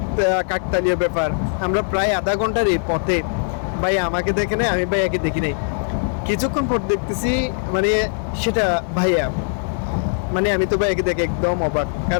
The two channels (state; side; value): silent; right; 65 dB below the other